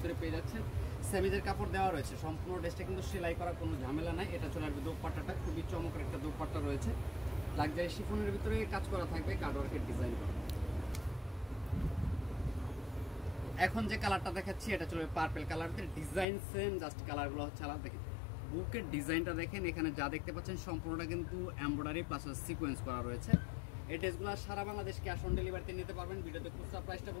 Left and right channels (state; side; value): drops out; right; at 16.2 s